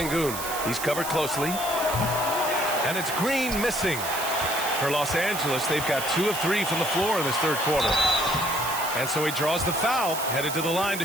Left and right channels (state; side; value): noise; right; hiss, 7 dB below the sound